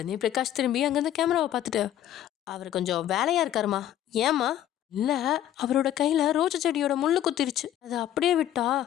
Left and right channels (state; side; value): quieter; right; 11.8 dB